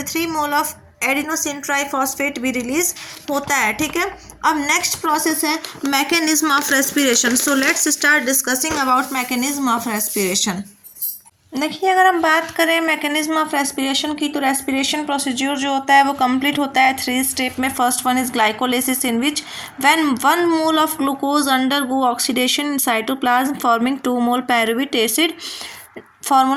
mole of adenosine triphosphate भी रिलीज होता है, ठीक है। अब नेक्स्ट प्रोसेस है mechanism of respiration. So let's start discussing about mechanism of respiration. देखिए, अगर हम बात करें मैकेनिज्म ऑफ रेस्पिरेशन की, तो रेस्पिरेशन प्रोसीड्यूर जो होता है वो कंप्लीट होता है 3 स्टेप में। First one is glycolysis, in which when 1 mole of glucose undergo oxidation in cytoplasm forming 2 mole pyruvate acid,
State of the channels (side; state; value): both; identical; correlation 1.00